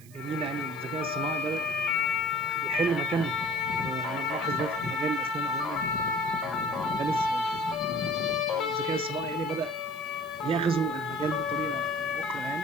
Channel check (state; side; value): noise; right; hiss, 23 dB below the sound